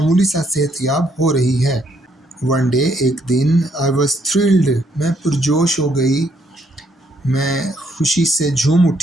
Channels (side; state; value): both; normal; correlation 0.71